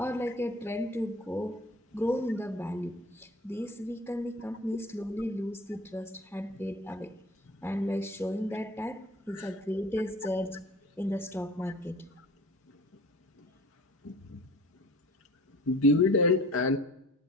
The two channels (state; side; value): normal; both; correlation 0.45